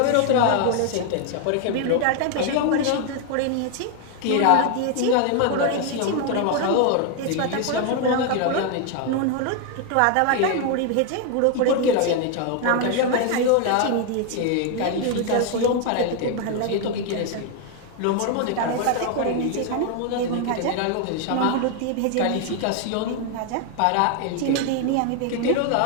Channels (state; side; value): different; both; correlation 0.01